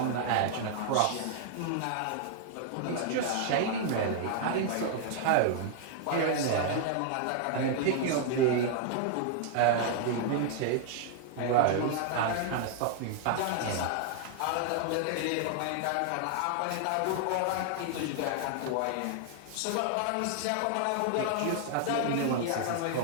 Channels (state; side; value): different; both; correlation -0.01